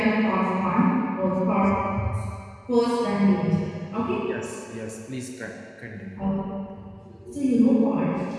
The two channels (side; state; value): both; identical; correlation 1.00